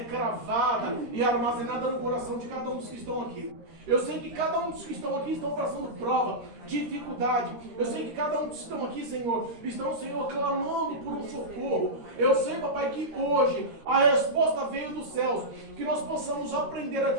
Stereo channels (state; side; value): late; left; 13 ms